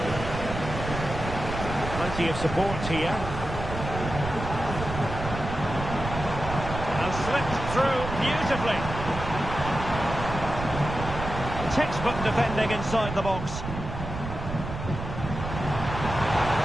Plenty of support here. And slipped through beautifully. Textbook defending inside the box.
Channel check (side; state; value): right; noise; rumble, 7 dB below the sound